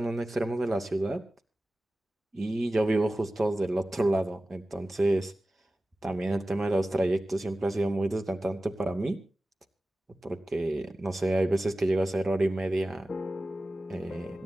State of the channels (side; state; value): both; normal; correlation 0.96